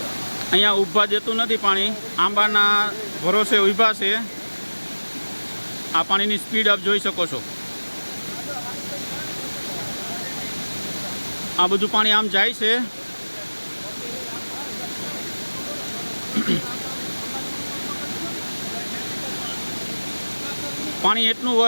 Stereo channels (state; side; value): inverted; both; correlation -1.00